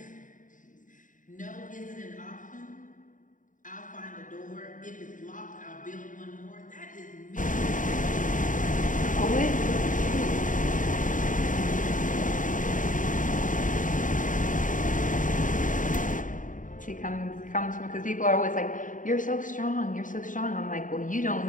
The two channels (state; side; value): late; right; 0.38 ms